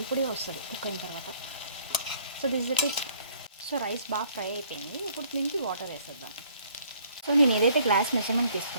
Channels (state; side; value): inverted; both; correlation -0.60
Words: పొడిగా వస్తుంది కుక్ అయిన తర్వాత. So this is it. So rice బాగా ఫ్రై అయిపోయింది. ఇప్పుడు దీనికి వాటర్ వేసేద్దాం. సో నేను ఏదైతే గ్లాస్ మెజర్మెంట్